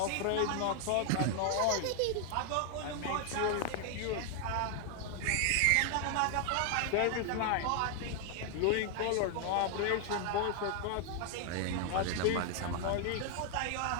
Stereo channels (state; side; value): different; both; correlation 0.00